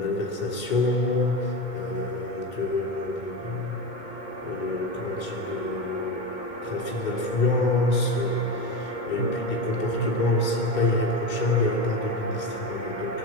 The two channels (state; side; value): late; right; 2.2 ms